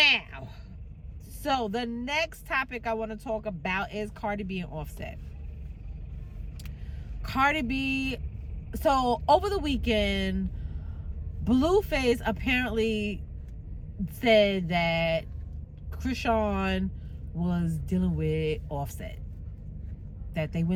So the next topic I want to talk about is Cardi B and Offset. Cardi B, so over the weekend, Blueface apparently said that Krishan was dealing with Offset. That they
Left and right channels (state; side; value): identical; both; correlation 1.00